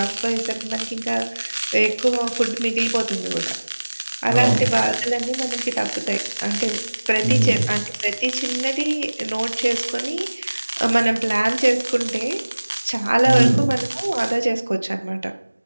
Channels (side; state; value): both; inverted; correlation -1.00